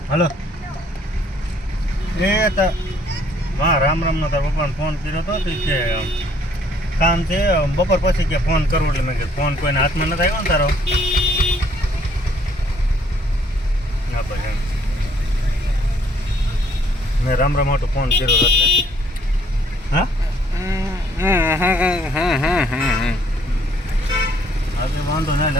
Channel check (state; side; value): normal; both; correlation 0.64